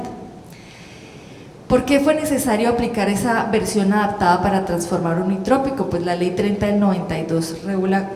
¿Por qué fue necesario aplicar esa versión adaptada para transformar Unitrópico? Pues la Ley 30 del 92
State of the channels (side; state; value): both; identical; correlation 1.00